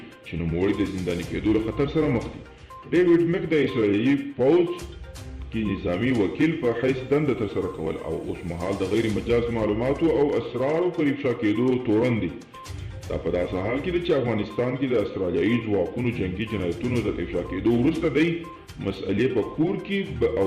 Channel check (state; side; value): identical; both; correlation 1.00